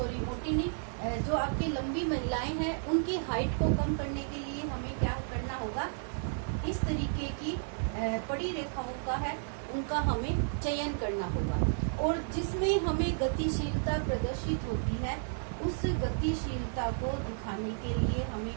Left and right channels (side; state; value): left; silent; 56 dB below the other